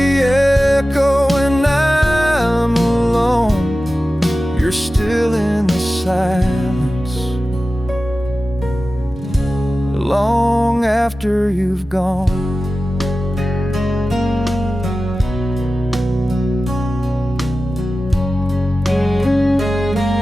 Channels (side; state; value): both; normal; correlation 0.95